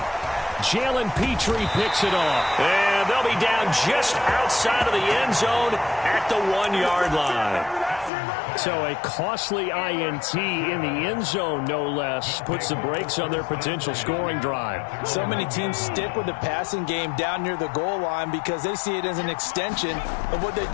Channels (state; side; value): drops out; right; at 8.1 s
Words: Jalen Petrie picks it off. And they'll be down just outside of the end zone at the 1-yard line. So a costly INT in the end zone, no less, puts the brakes on their potential scoring drive. So many teams stick with the passing game down near the goal line because they see it as an extension of what they